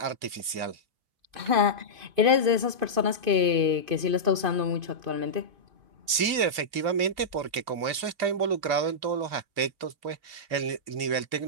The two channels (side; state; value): left; late; 2.5 ms